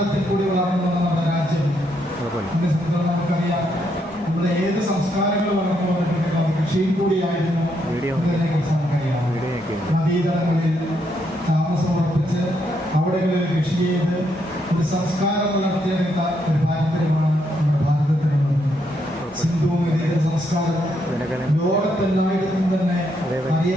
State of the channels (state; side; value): normal; both; correlation 0.77